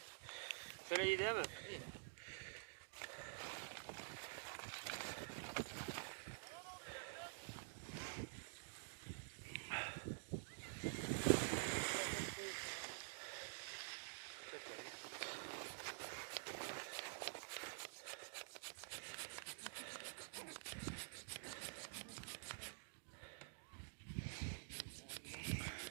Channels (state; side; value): silent; left; digital silence